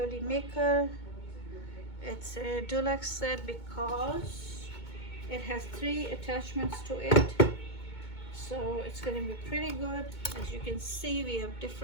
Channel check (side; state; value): right; late; 2.2 ms